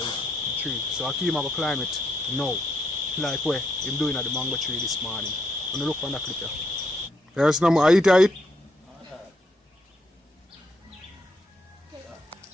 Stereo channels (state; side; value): normal; both; correlation 0.77